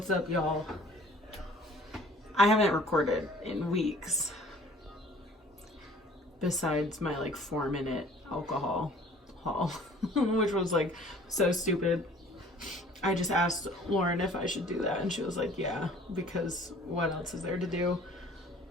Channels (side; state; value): both; normal; correlation 0.52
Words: up, y'all? I haven't recorded in weeks besides my like 4-minute alcohol haul, which was like so stupid. I just asked Lauren if I should do that, and she was like, yeah, because what else is there to do?